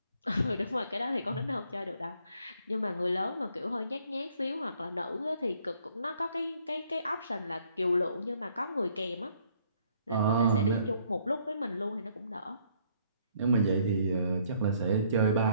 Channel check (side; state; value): both; inverted; correlation -0.65